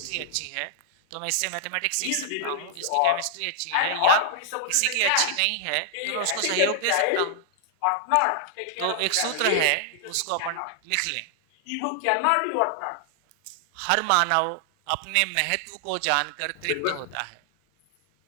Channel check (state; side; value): different; both; correlation -0.01